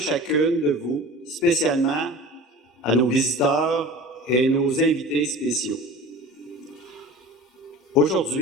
de vous, spécialement à nos visiteurs et nos invités spéciaux.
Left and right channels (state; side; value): normal; both; correlation 0.38